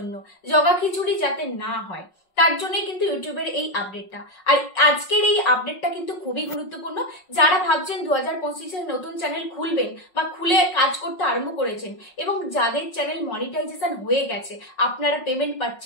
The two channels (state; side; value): late; right; 5.5 ms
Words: জগাখিচুড়ি যাতে না হয় তার জন্য কিন্তু ইউটিউবের এই আপডেটটা। আর আজকের এই আপডেটটা কিন্তু খুবই গুরুত্বপূর্ণ। যারা ভাবছেন 2025-এ নতুন চ্যানেল খুলবেন বা খুলে কাজ করতে আরম্ভ করেছেন এবং যাদের চ্যানেল মনিটাইজেশন হয়ে গেছে, আপনারা পেমেন্ট